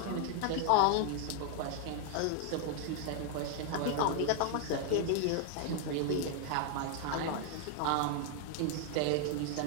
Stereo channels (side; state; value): both; different; correlation 0.00